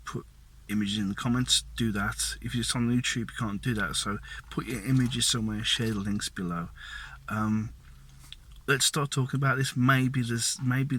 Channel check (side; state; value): both; identical; correlation 1.00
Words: put images in the comments, do that. If it's on YouTube, you can't do that, so put your images somewhere, share the links below. Let's start talking about this. Maybe there's